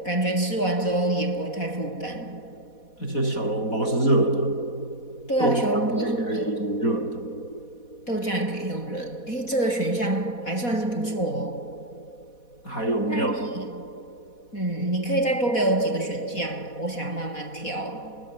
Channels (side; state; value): right; late; 4.1 ms